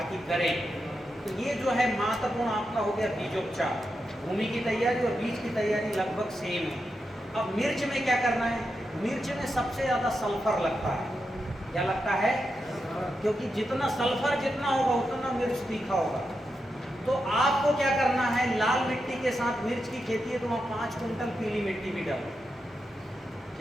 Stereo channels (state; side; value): normal; both; correlation 0.87